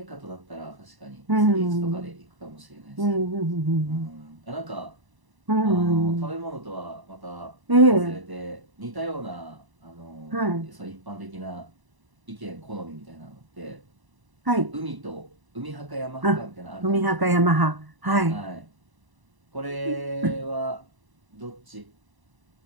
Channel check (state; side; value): late; left; 1.0 ms